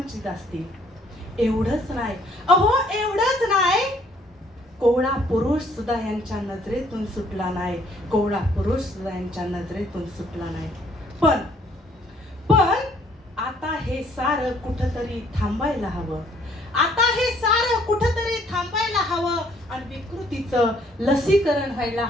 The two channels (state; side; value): normal; both; correlation 0.63